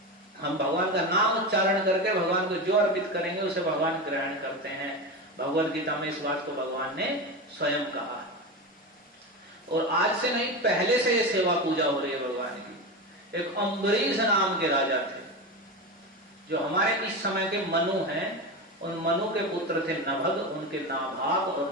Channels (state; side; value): normal; both; correlation 0.21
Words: हम भगवान का नाम उच्चारण करके भगवान को जो अर्पित करेंगे उसे भगवान ग्रहण करते हैं। भगवद गीता में इस बात को भगवान ने स्वयं कहा। और आज से नहीं, पहले से ये सेवा पूजा हो रही है भगवान की। एक अम्बरीश नाम के राजा थे, जो हमारे इस समय के मनु हैं। उन मनु के पुत्र थे नभग, उनके नाभाग, और